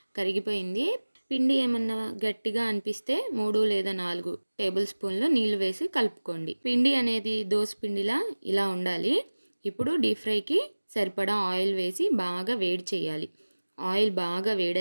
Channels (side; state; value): both; inverted; correlation -1.00